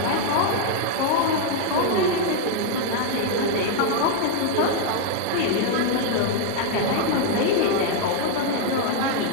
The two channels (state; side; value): different; both; correlation 0.00